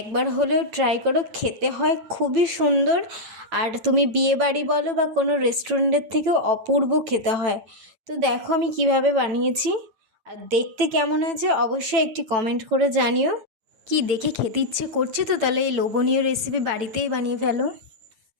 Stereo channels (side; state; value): left; late; 9.0 ms